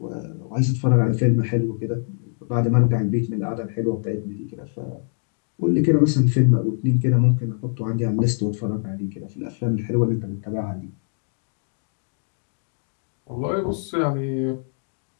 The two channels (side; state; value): right; silent; 63 dB below the other